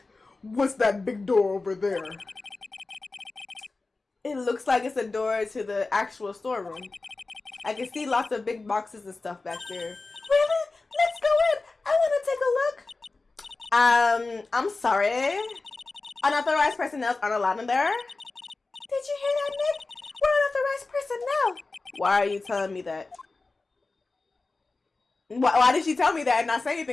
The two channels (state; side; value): quieter; right; 3.6 dB